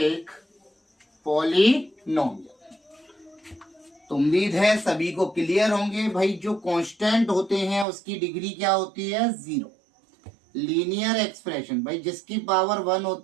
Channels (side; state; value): left; drops out; at 7.9 s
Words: पॉलिनोमियल। तो उम्मीद है सभी को क्लियर होंगे भाई। जो कांस्टेंट होते हैं उसकी डिग्री क्या होती है? 0। लीनियर एक्सप्रेशन भाई जिसकी पावर 1